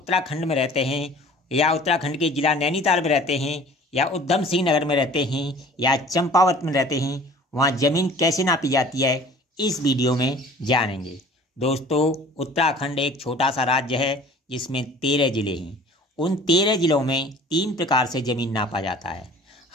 में रहते हैं या उत्तराखंड के जिला नैनीताल में रहते हैं या उधम सिंह नगर में रहते हैं या चंपावत में रहते हैं, वहाँ ज़मीन कैसे नापी जाती है इस वीडियो में जानेंगे। दोस्तों, उत्तराखंड एक छोटा सा राज्य है जिसमें 13 ज़िले हैं। उन 13 ज़िलों में 3 प्रकार से ज़मीन नापा जाता है।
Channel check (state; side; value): normal; both; correlation 0.48